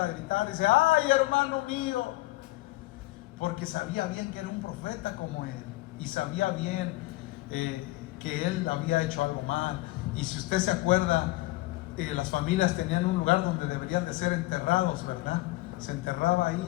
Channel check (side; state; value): right; quieter; 19.7 dB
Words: a gritar, dice, ay, hermano mío, porque sabía bien que era un profeta como él, y sabía bien que él había hecho algo mal. Y si usted se acuerda, las familias tenían un lugar donde deberían de ser enterrados, ¿verdad? Se enterraba